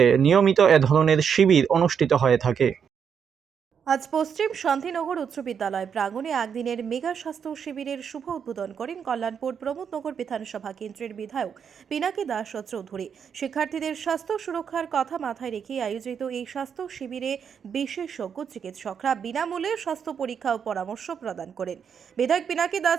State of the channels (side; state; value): left; quieter; 7.3 dB